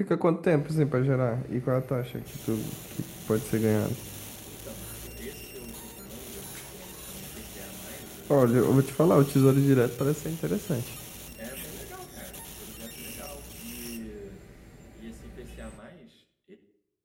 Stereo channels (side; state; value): both; identical; correlation 1.00